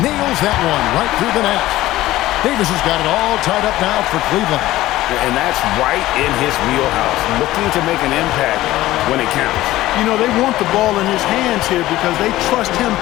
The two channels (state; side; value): quieter; right; 16.0 dB